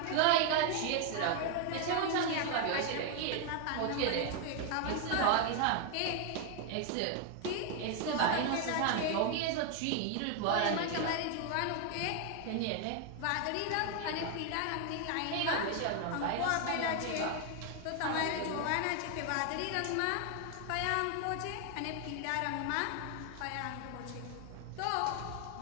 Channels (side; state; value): both; different; correlation 0.00